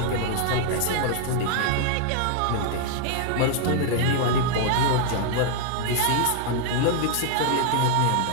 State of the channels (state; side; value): different; both; correlation 0.00